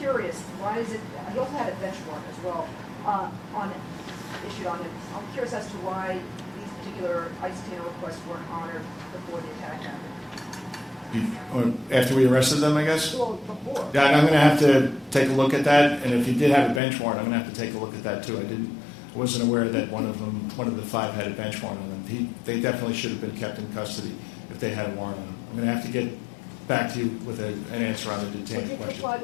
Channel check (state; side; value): drops out; right; at 16.8 s